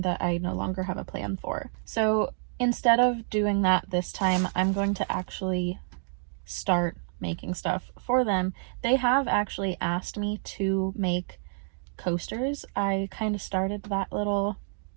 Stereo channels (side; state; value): left; silent; digital silence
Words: that I no longer have a plan for. So instead of doing that this time, I'm going to actually start making stuff for them. They have actually asked me to make coasters. I kind of started that little